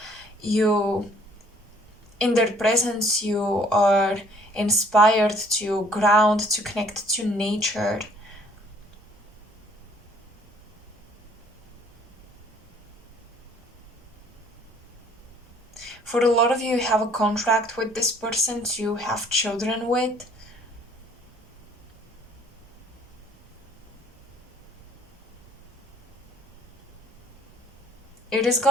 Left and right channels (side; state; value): both; normal; correlation 0.59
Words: In their presence, you are inspired to ground, to connect to nature. For a lot of you, you have a contract with this person to have children with. It is